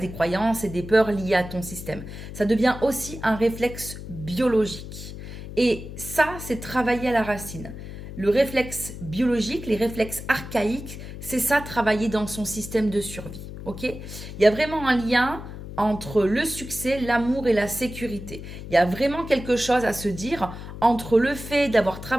des croyances et des peurs liées à ton système. Ça devient aussi un réflexe biologique. Et ça, c'est travailler à la racine. Le réflexe biologique, les réflexes archaïques, c'est ça, travailler dans son système de survie. Ok? Il y a vraiment un lien entre le succès, l'amour et la sécurité. Il y a vraiment quelque chose à se dire entre le fait d'avoir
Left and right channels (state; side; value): noise; left; hum, 11 dB below the sound